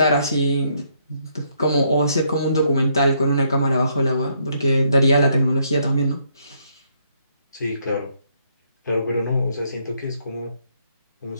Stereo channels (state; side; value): inverted; both; correlation -0.71